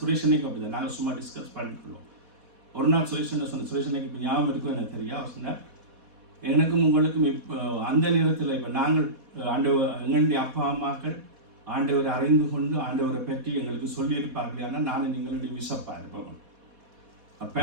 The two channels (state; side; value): late; left; 4.1 ms